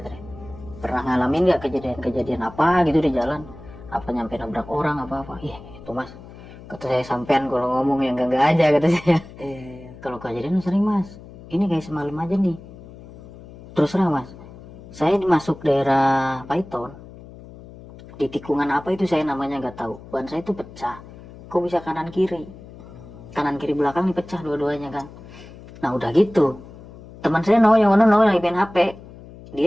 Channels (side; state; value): left; noise; hum, 18 dB below the sound